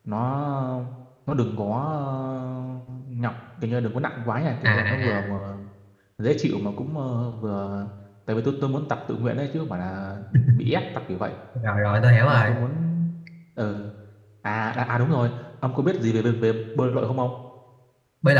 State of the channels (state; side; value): identical; both; correlation 1.00